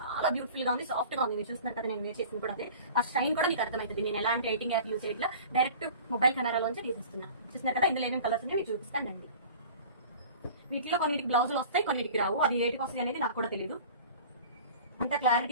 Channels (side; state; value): both; inverted; correlation -0.42